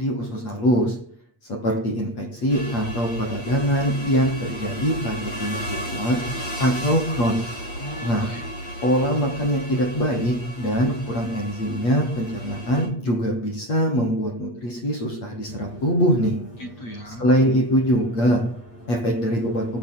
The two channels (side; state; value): right; late; 8.5 ms